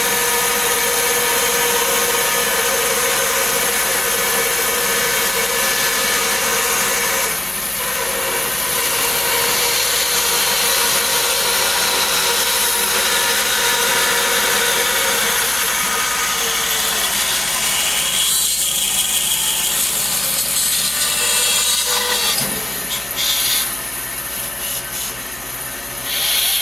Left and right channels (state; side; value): noise; left; hum, 23 dB below the sound